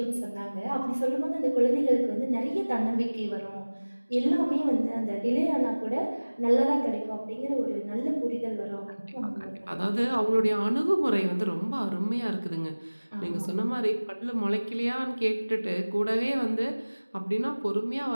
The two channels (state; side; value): inverted; both; correlation -1.00